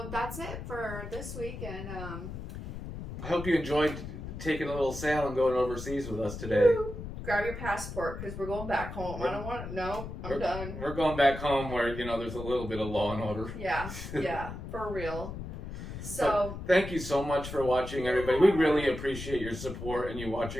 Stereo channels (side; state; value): left; noise; rumble, 9 dB below the sound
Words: that's it for this week, and I hope you enjoyed taking a little sail and going overseas with us today. Grab your passport, because we're going back home. I don't want... No, I'm done. We're going back home where, there's a little bit of law and order. Yeah, for real. So, thank you so much for watching, everybody. We really appreciate your support and you